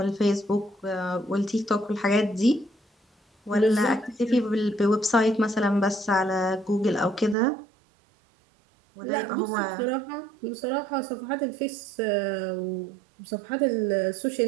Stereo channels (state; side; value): drops out; left; at 7.4 s